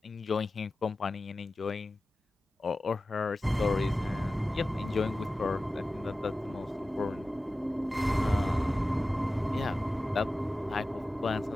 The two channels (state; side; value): normal; both; correlation 0.95